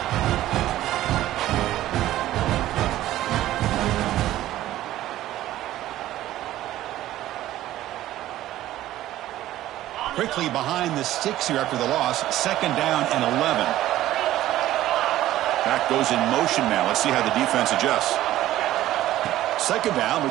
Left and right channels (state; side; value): quieter; left; 14.2 dB